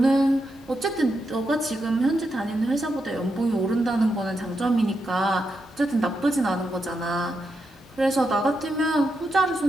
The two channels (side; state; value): both; normal; correlation 0.84